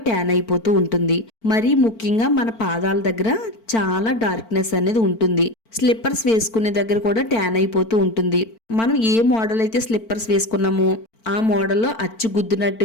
ట్యాన్ అయిపోతూ ఉంటుంది. మరీ ముఖ్యంగా మన పాదాల దగ్గర చాలా డార్క్నెస్ అనేది ఉంటుంది. స్లిప్పర్స్ వేసుకునే దగ్గర కూడా ట్యాన్ అయిపోతూ ఉంటుంది. మనం ఏ మోడల్ అయితే స్లిప్పర్స్ వేసుకున్నామో ఆ మోడల్లో అచ్చు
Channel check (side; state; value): right; late; 4.5 ms